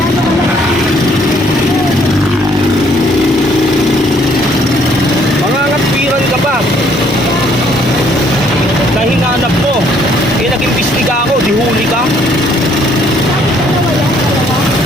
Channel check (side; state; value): both; normal; correlation 0.64